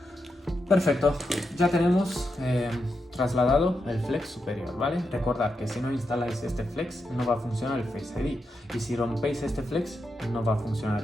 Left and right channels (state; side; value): normal; both; correlation 0.86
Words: Perfecto, ya tenemos trasladado el flex superior, ¿vale? Recordad que si no instaláis este flex no va a funcionar el Face ID, y si rompéis este flex no va a funcionar